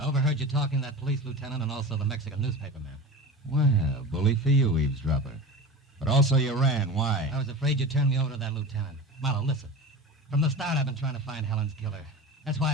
overheard you talking to that police lieutenant and also the Mexican newspaper man. Well, bully for you, eavesdropper. But also you ran. Why? I was afraid you'd turn me over to that lieutenant. Marlowe, listen. From the start, I've been trying to find Helen's killer. That's why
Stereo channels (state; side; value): normal; both; correlation 0.31